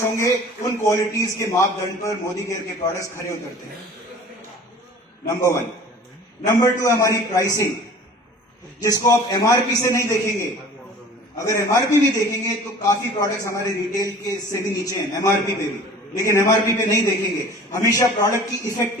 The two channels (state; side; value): normal; both; correlation 0.45